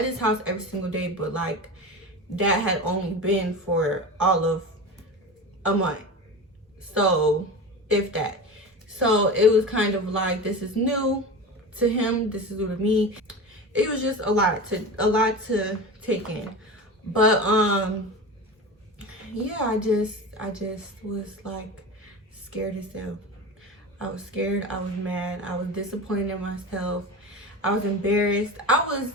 his house every single day, but like that had only been for all of a month. So if that. So it was kind of like, this is new to him, this is new to me. It was just a lot to take in. But yeah, I just was like scared as hell. I was scared, I was mad, I was disappointed in myself, I was embarrassed. I was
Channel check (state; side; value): normal; both; correlation 0.28